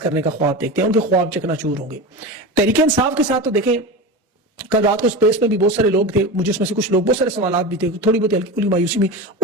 کرنے کا خواب دیکھتے ہیں. ان کے خواب چکنا-چور ہوں گے. تحریک انصاف کے ساتھ تو دیکھیں کل رات کو اسپیس میں بھی بہت سارے لوگ تھے, مجھے اس میں سے کچھ لوگ, بہت سارے سوالات بھی تھے, تھوڑی بہت ہلکی پھلکی مایوسی بھی.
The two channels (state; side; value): normal; both; correlation 0.26